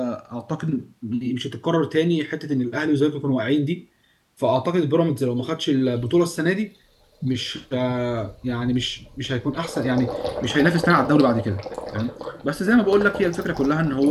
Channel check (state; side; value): identical; both; correlation 1.00